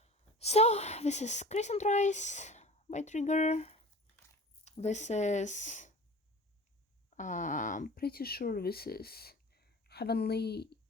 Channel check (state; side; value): normal; both; correlation 0.38